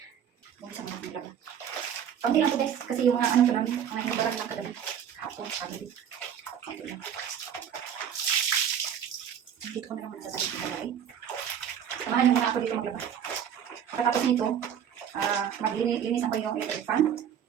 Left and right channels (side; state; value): left; quieter; 8.8 dB